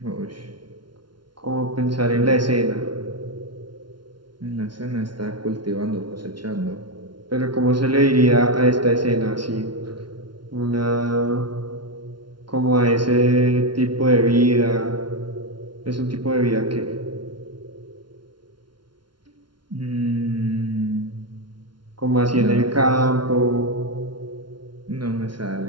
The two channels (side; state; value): left; late; 0.72 ms